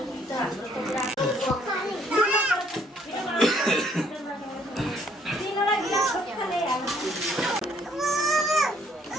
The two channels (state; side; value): normal; both; correlation 0.65